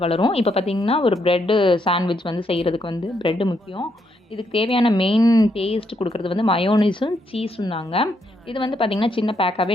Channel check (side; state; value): both; normal; correlation 0.77